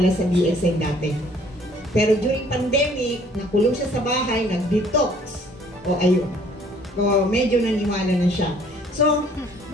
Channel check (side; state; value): both; normal; correlation 0.58